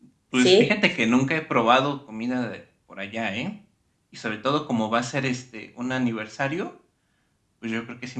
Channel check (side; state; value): both; identical; correlation 1.00